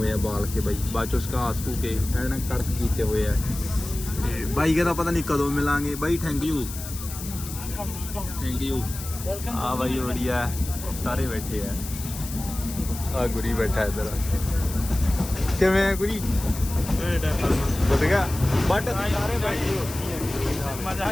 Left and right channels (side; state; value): left; noise; hiss, 11 dB below the sound